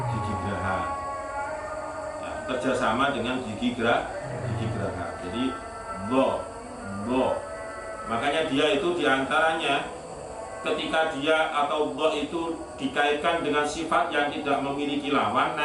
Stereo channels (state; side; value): identical; both; correlation 1.00